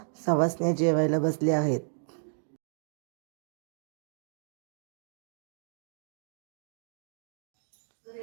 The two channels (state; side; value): silent; left; digital silence